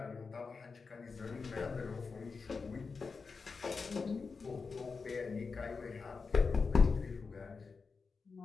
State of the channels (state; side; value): quieter; right; 4.8 dB